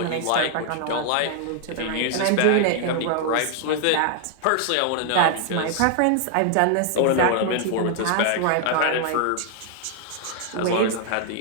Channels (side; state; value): both; different; correlation 0.00